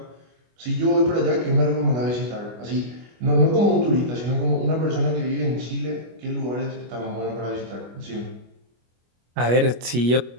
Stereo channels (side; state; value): left; late; 25 ms